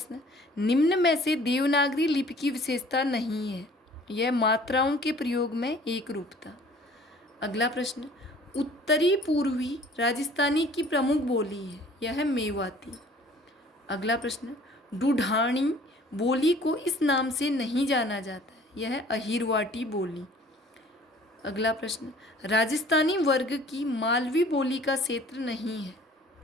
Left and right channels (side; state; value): both; normal; correlation 0.52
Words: निम्न में से देवनागरी लिपि की विशेषता नहीं है, यह मात्राओं के प्रयोग में एक रूपता। अगला प्रश्न, उत्तरी पूर्वी राजस्थानी की प्रमुख बोली है, यह है मेवाती। अगला प्रश्न, ढूढ़ानी बोली को इस नाम से नहीं जाना जाता है, यह है अहिरवाटी बोली। अगला प्रश्न, राजस्थानी वर्ग की मालवी बोली का क्षेत्र नहीं है,